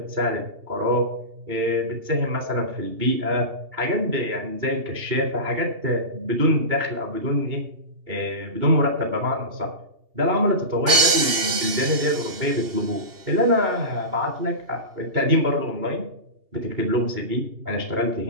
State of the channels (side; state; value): left; late; 2.8 ms